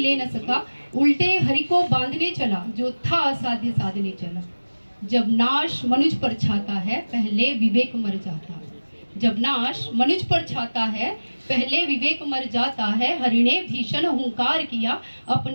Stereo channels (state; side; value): inverted; both; correlation -1.00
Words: न सका, उल्टे हरि को बांधने चला, जो था असाध्य साधने चला। जब नाश मनुज पर छाता है, पहले विवेक मर जाता है। जब नाश मनुज पर छाता है, पहले विवेक मर जाता है। हरि ने भीषण हुंकार किया,